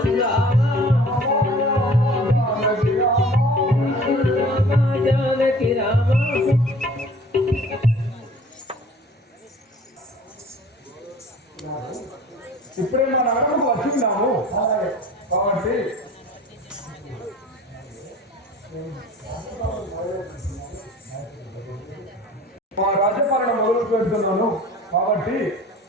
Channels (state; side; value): normal; both; correlation 0.46